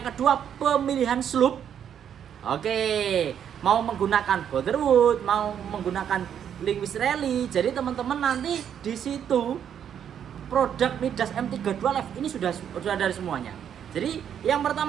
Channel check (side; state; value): left; quieter; 8.9 dB